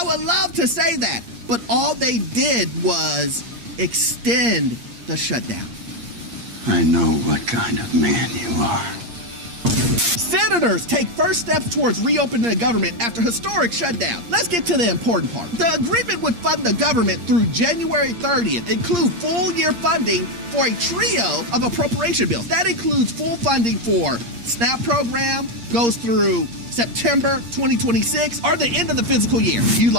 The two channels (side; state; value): left; late; 8.6 ms